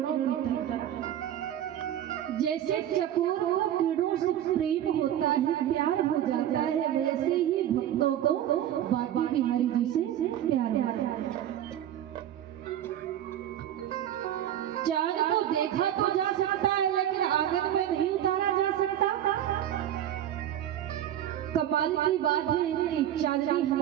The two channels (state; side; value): quieter; left; 11.4 dB